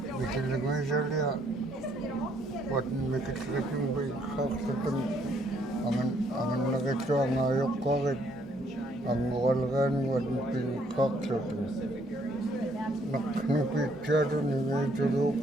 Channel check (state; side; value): normal; both; correlation 0.68